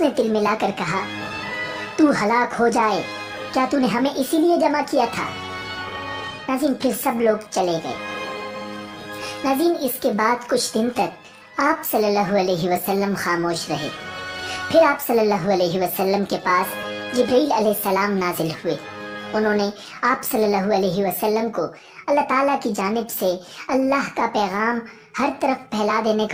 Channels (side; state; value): both; identical; correlation 1.00